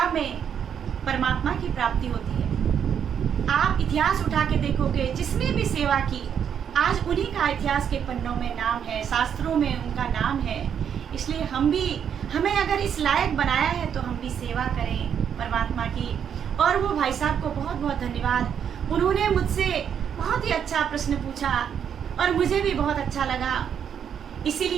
में परमात्मा की प्राप्ति होती है। आप इतिहास उठा के देखोगे, जिसने भी सेवा की आज उन्हीं का इतिहास के पन्नों में नाम है, शास्त्रों में उनका नाम है। इसलिए हमें अगर इस लायक बनाया है तो हम भी सेवा करें परमात्मा की। और वो भाई साहब को बहुत बहुत धन्यवाद, उन्होंने मुझसे बहुत ही अच्छा प्रश्न पूछा और मुझे भी बहुत अच्छा लगा।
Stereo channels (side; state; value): left; quieter; 8.2 dB